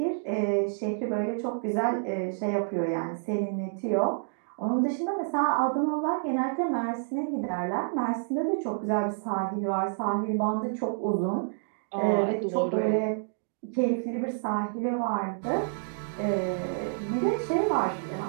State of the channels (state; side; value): silent; left; digital silence